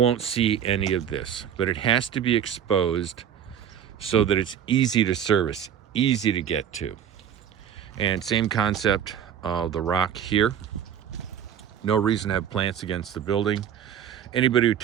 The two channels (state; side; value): quieter; left; 9.1 dB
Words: see any of this, but it has to be exposed so that it's easy to service, easy to get to. And same concept of the rock here. No reason to have plants against the building. Anybody who